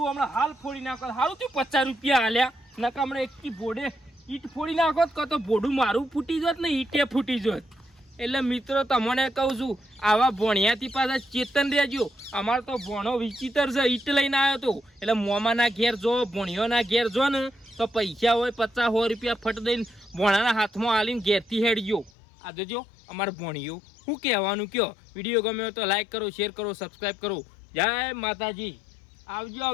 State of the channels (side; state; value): right; drops out; at 22.1 s